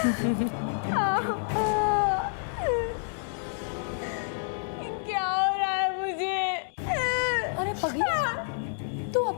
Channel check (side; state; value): right; silent; digital silence